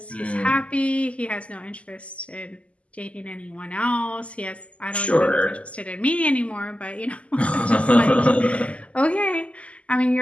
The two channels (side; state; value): right; late; 0.062 ms